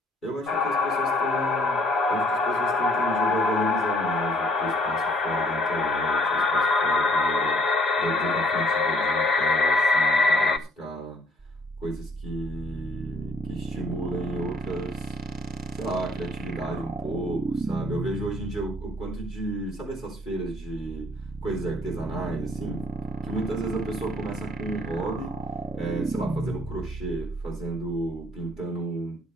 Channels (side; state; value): both; normal; correlation 0.62